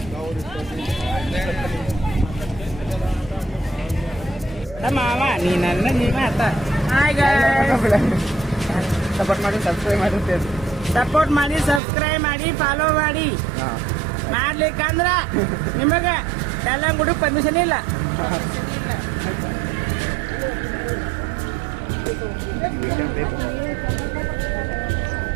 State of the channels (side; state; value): left; drops out; at 11.8 s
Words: ಮಾವ ನೀ ನನ್ನ ಮಾತ ಹಾಯ್ ಸಪೋರ್ಟ್ ಮಾಡಿ ಸಬ್ಸ್ಕ್ರೈಬ್ ಮಾಡುತ್ತೆ. ಸಪೋರ್ಟ್ ಮಾಡಿ ಸಬ್ಸ್ಕ್ರೈಬ್ ಮಾಡಿ ಫಾಲೋ ಮಾಡಿ. ಮಾಡ್ಲಿಕ್ಕಂದ್ರ ನಿಮಗೆ ಎಲ್ಲ ಗುಡಿ ಪರ್ಮಿಷನ್ ಇಲ್ಲ.